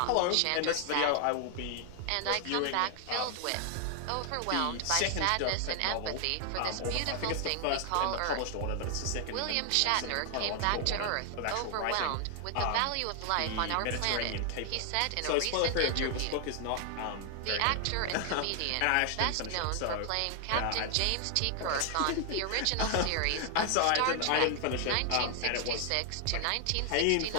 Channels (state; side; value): different; both; correlation 0.00